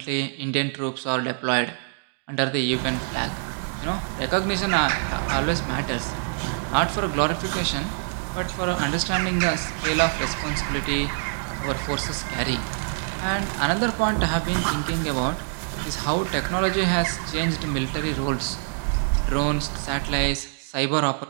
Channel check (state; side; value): silent; left; digital silence